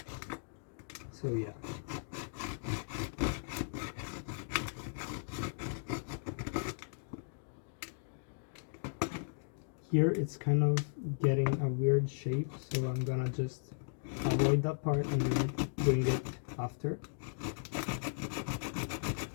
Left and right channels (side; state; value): right; silent; digital silence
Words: So yeah. Here it's kind of getting a weird shape, so I'm gonna just avoid that part and then doing it after.